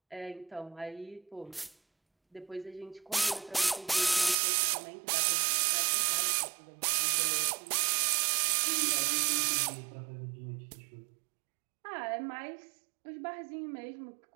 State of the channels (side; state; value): left; drops out; at 4.4 s